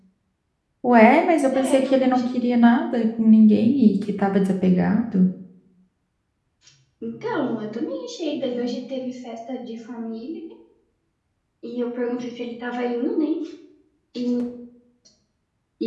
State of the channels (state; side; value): identical; both; correlation 1.00